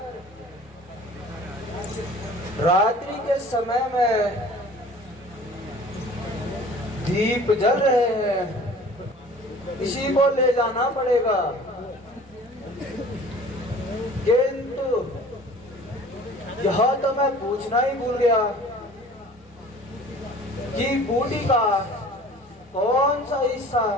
रात्रि के समय में दीप जल रहे हैं, इसी को ले जाना पड़ेगा। किंतु यह तो मैं पूछना ही भूल गया कि बूटी का कौन सा हिस्सा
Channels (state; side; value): normal; both; correlation 0.47